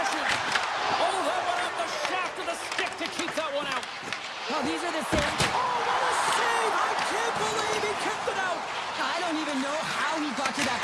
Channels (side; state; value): both; identical; correlation 1.00